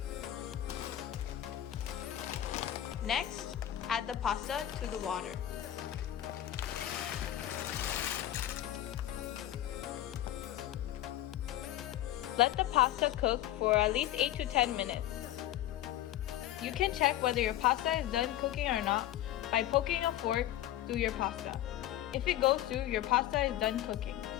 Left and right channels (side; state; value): right; quieter; 13.1 dB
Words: Next, add the pasta to the water. Let the pasta cook for at least 8 to 10 minutes. You can check whether your pasta is done cooking or not by poking a fork through your pasta. If it goes through, your pasta is done cooking.